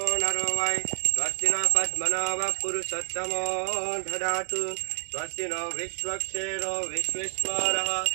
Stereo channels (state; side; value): silent; left; 59 dB below the other